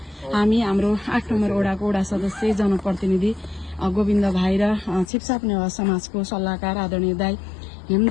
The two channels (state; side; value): drops out; right; at 5.1 s